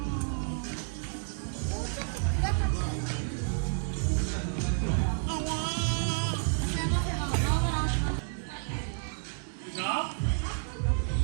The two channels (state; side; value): silent; left; digital silence